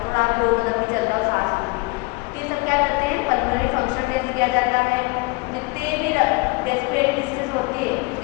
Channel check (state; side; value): quieter; right; 26.1 dB